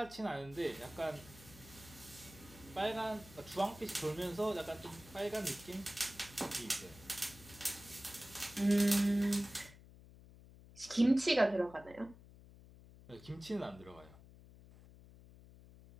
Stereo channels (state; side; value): noise; left; hum, 20 dB below the sound